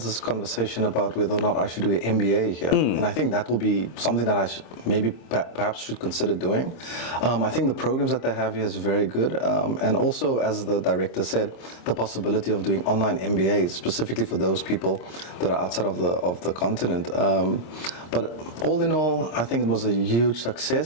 conversation about whether or not I should do an MBA here. And I think that will be something that I perhaps should consider doing. I think the programs that they have here is very good. And also, as the director said, the possibility of doing online MBAs, specifically for those people that are outside of the continent. But all in all, I think it was a huge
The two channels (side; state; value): right; late; 26 ms